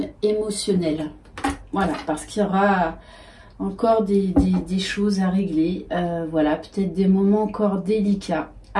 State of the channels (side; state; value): both; identical; correlation 1.00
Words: émotionnel. Voilà, parce qu'il y aura encore des choses à régler. Voilà, peut-être des moments encore délicats.